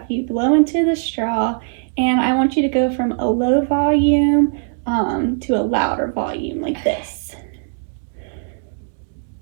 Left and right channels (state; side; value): silent; left; digital silence